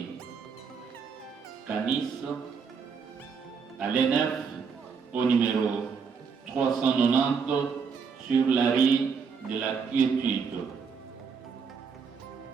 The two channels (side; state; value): left; quieter; 5.8 dB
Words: Canis, à l'ENF au numéro 390 sur la rue de la Quiétude.